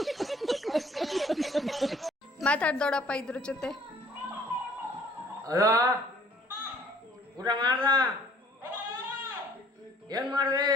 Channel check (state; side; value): normal; both; correlation 0.57